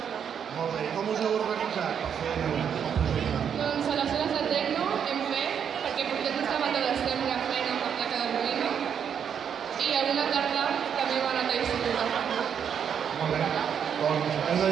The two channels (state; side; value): quieter; left; 7.9 dB